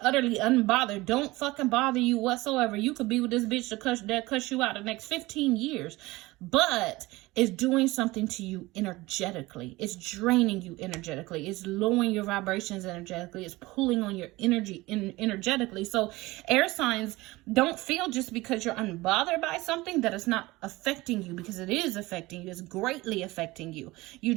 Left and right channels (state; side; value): quieter; left; 20.3 dB